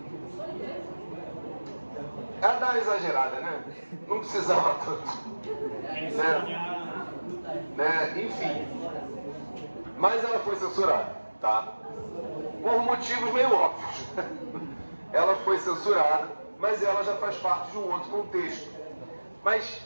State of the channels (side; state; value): both; inverted; correlation -1.00